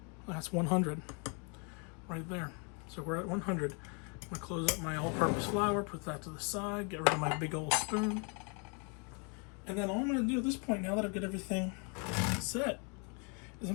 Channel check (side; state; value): right; quieter; 36.0 dB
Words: That's 100 right there. So we're at 100. I'm going to close up my all-purpose flour, put that to the side, get rid of my big old spoon. And then all I'm going to do at this point, now that I've got everything set, is